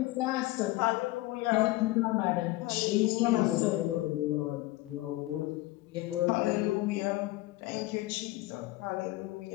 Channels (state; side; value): quieter; right; 18.8 dB